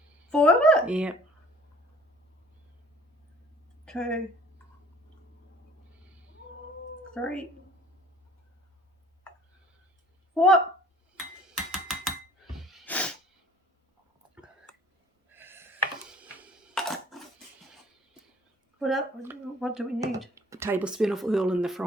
4 of it? Yeah. 2, 3, 4. What do we need? A tablespoon of oil in the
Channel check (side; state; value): both; normal; correlation 0.52